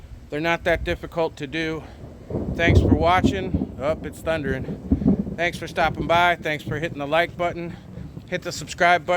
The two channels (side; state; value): both; identical; correlation 1.00